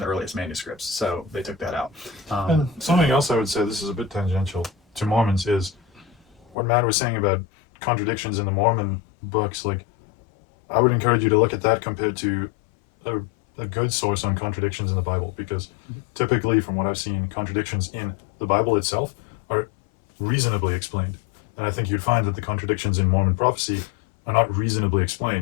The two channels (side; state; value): right; drops out; at 6.6 s